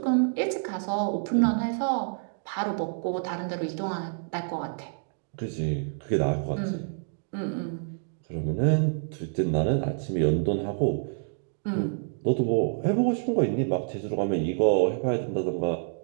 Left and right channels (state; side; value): silent; left; digital silence